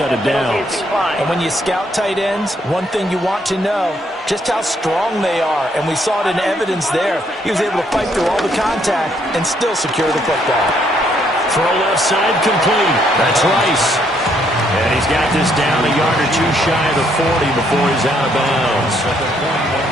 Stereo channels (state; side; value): normal; both; correlation 0.70